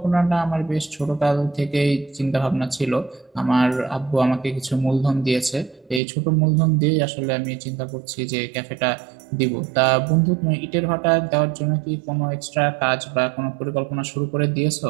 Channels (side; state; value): left; drops out; at 6.0 s